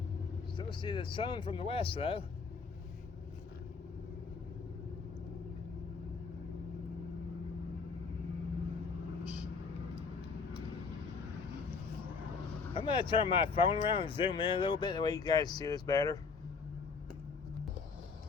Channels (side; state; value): right; quieter; 4.9 dB